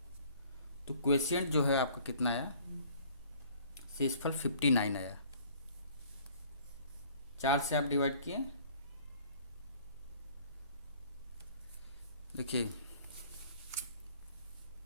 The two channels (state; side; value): inverted; both; correlation -0.54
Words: तो क्वेश्चन जो है आपका कितना आया, शेषफल 59 आया। 4 से आप डिवाइड किए, देखिए